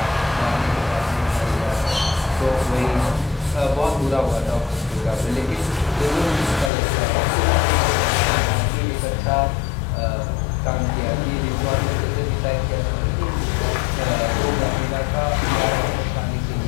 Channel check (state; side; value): drops out; right; at 6.7 s